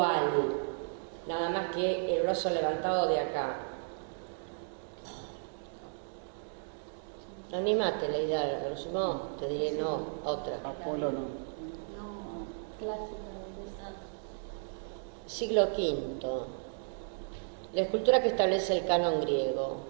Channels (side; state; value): left; silent; digital silence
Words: Nada más que el brazo levantado de acá. Anímate, Leida, a lo sumo te diré no, otra. Apolo no. Clásica de Siglo V. La escultura que establece el canon